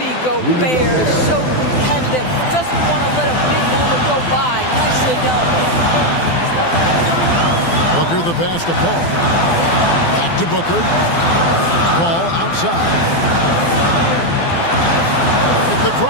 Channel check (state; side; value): late; right; 12 ms